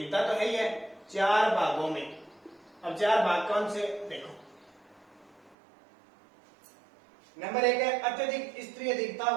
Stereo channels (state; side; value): drops out; left; at 5.6 s